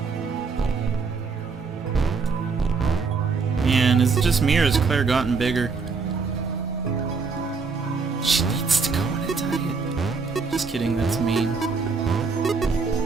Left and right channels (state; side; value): quieter; left; 4.8 dB